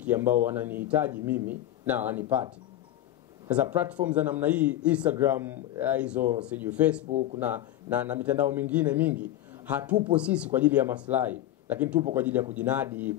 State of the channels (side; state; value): right; quieter; 13.2 dB